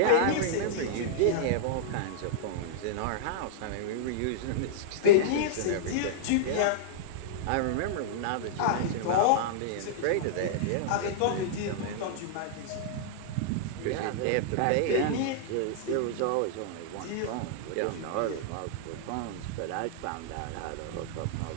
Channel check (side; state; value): both; different; correlation -0.02